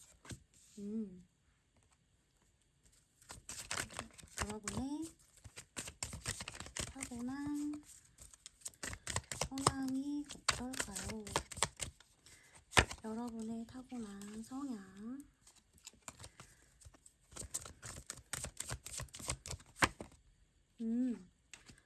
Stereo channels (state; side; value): identical; both; correlation 1.00